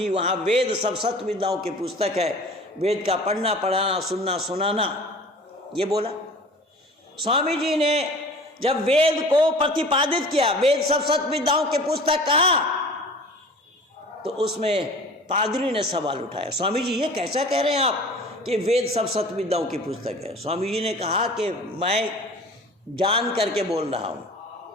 वहाँ वेद सब सत्य विद्याओं की पुस्तक है, वेद का पढ़ना पढ़ाना सुनना सुनाना, ये बोला। स्वामी जी ने जब वेद को प्रतिपादित किया, वेद सब सत्य विद्याओं की पुस्तक कहा, तो उसमें पादरी ने सवाल उठाया, स्वामी जी ये कैसा कह रहे हैं आप कि वेद सब सत्य विद्याओं की पुस्तक है? स्वामी जी ने कहा कि मैं जान करके बोल रहा हूँ।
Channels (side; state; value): both; normal; correlation 0.43